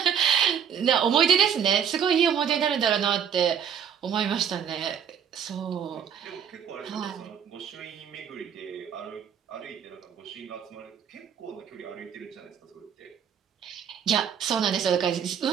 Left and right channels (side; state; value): left; quieter; 8.1 dB